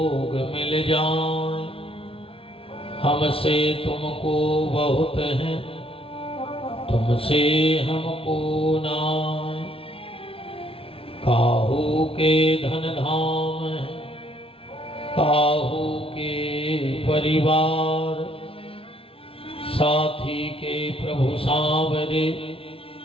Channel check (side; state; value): right; late; 0.26 ms